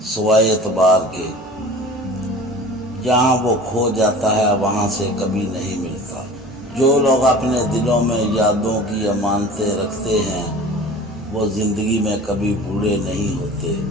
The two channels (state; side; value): normal; both; correlation 0.40